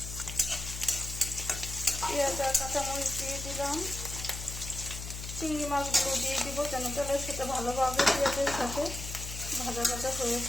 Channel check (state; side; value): noise; left; hum, 8 dB below the sound